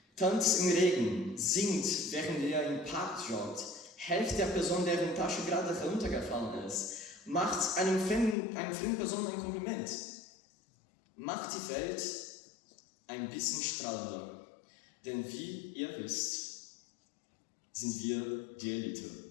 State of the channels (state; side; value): drops out; right; at 8.3 s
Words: Tanzt im Regen, singt, während ihr im Park joggt, helft der Person, deren Tasche gerade heruntergefallen ist, macht einer fremden Person ein Kompliment. Macht die Welt ein bisschen strahlender, denn wie ihr wisst, sind wir die Elite.